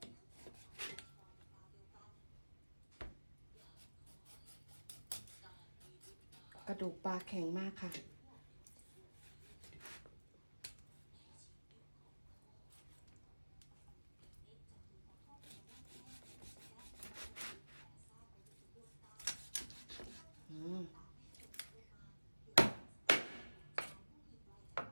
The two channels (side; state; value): both; inverted; correlation -1.00